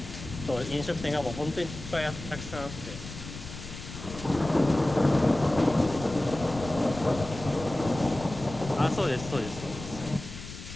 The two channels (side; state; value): left; noise; rumble, 11 dB below the sound